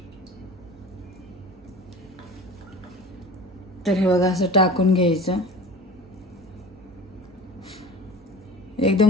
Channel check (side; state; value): both; normal; correlation 0.39